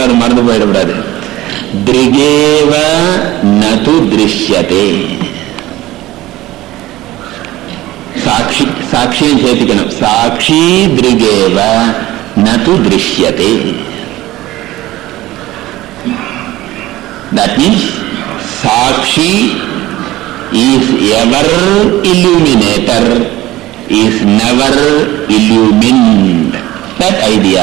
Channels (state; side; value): quieter; left; 16.7 dB